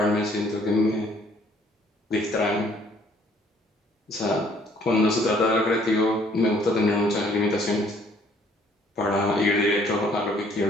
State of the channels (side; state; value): both; normal; correlation 0.61